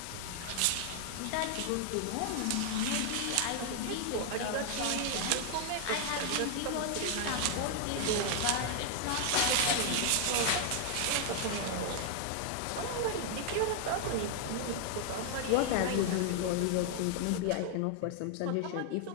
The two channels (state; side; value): different; both; correlation 0.00